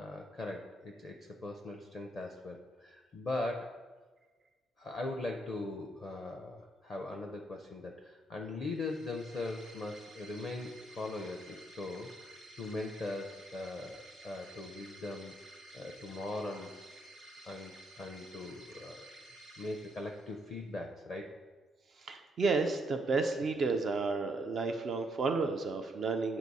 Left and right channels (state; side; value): normal; both; correlation 0.74